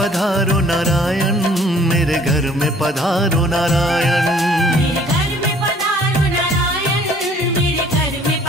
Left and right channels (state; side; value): normal; both; correlation 0.57